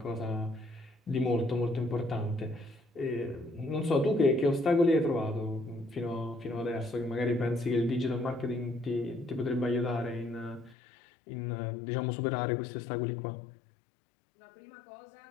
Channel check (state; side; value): drops out; right; at 10.8 s